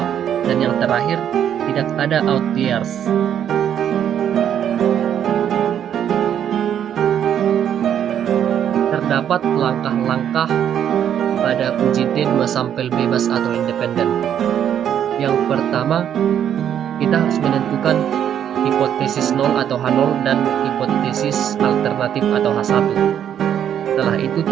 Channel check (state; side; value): quieter; left; 9.5 dB